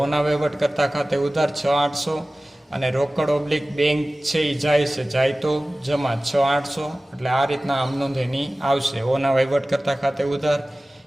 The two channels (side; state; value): both; normal; correlation 0.97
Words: ઓના વહીવટ કરતા ખાતે ઉધાર 6,800 અને રોકડ ઓબ્લિક બેંક છે એ જાય છે, જાય તો જમા 6,800. એટલે આ રીતના આમ નોંધ એની આવશે. ઓના વહીવટ કરતા ખાતે ઉધાર,